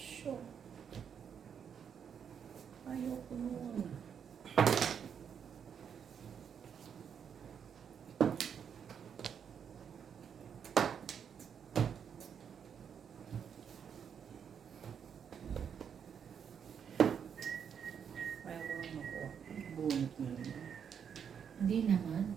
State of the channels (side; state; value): left; quieter; 7.6 dB